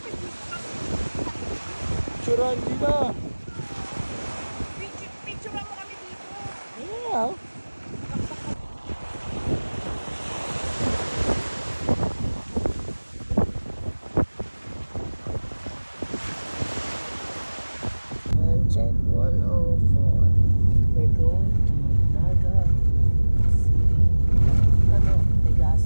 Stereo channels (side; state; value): both; inverted; correlation -1.00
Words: Picturean dito. Picture mo kami dito. Yeah. And check 104. We're going to Naga City. Ano?